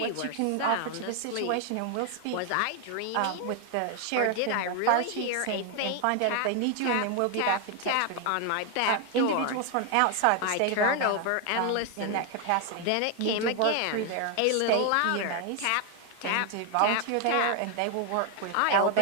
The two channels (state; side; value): different; both; correlation 0.00